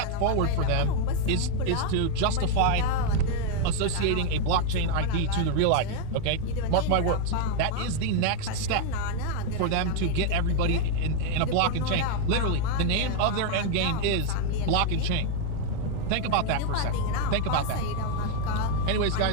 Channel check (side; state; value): both; different; correlation 0.00